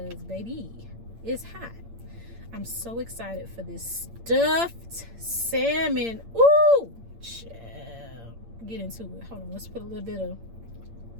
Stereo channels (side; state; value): left; late; 8.7 ms